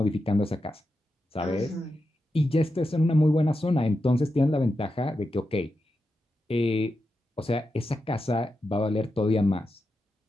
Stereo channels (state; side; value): normal; both; correlation 0.89